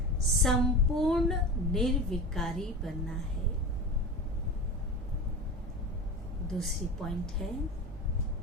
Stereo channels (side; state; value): both; normal; correlation 0.29